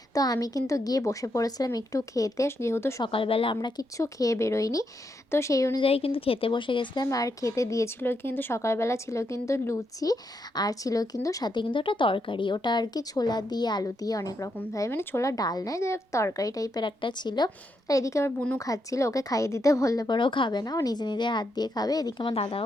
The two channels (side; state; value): both; normal; correlation 0.81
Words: তো আমি কিন্তু গিয়ে বসে পড়েছিলাম একটু খেতে, যেহেতু সকালবেলা আমরা কিচ্ছু খেয়ে বেরোইনি। তো সেই অনুযায়ী কিন্তু খেতে বসে গেছিলাম। আর খেতে দিয়েছিল কিন্তু সকালবেলা ছিল কিন্তু লুচি, আর ছিল কিন্তু সাথে কিন্তু একটা তরকারি, ওটা আর কি ছোলা দিয়ে আলু দিয়ে অনেক রকমভাবে, মানে ছোলা ডাল নয়, যে তরকারি টাইপের একটা ছিল। আর এদিকে আমার বুনু খাচ্ছিল, ওকে খাইয়ে দিতে বললে পরেও খাবে না, ও নিজে নিজে হাত দিয়ে খাবে। এদিকে আমার